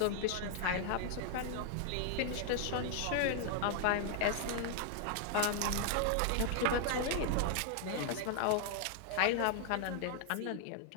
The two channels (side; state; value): both; different; correlation 0.00